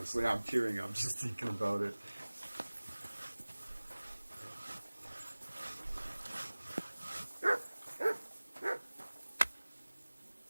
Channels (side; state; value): both; inverted; correlation -1.00